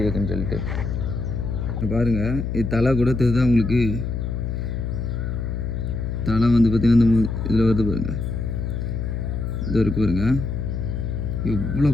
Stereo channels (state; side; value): noise; left; hum, 3 dB below the sound